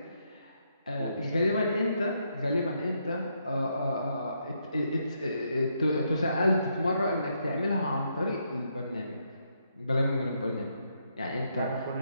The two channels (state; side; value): inverted; both; correlation -0.77